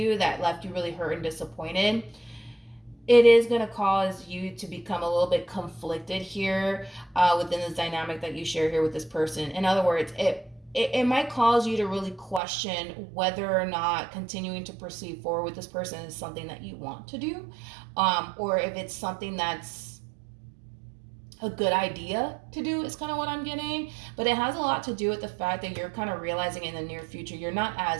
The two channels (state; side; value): drops out; left; at 12.4 s